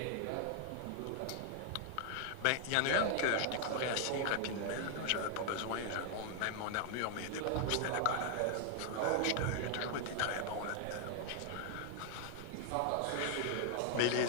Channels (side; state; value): both; different; correlation 0.00